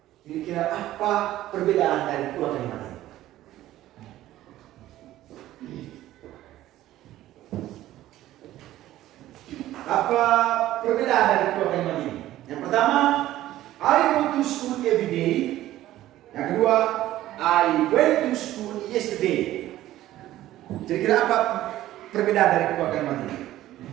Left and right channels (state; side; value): quieter; left; 14.4 dB